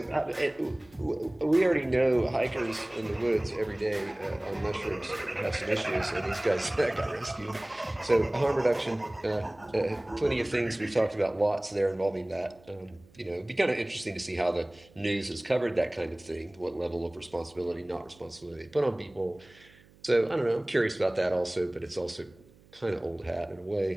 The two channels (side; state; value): right; noise; hum, 27 dB below the sound